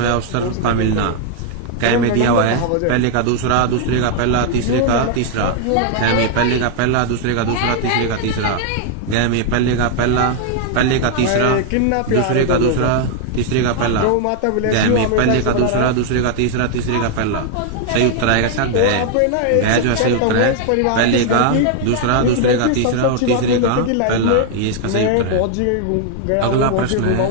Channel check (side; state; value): both; different; correlation 0.00